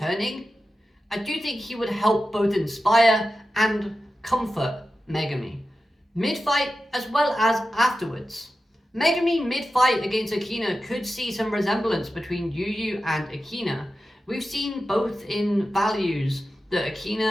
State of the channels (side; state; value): both; normal; correlation 0.92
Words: I do think he would help both inspire and comfort Megami. Mid-fight as well as afterwards. Megami mid-fight against Akina could see some resemblance between Yu and Akina. We've seen both in values that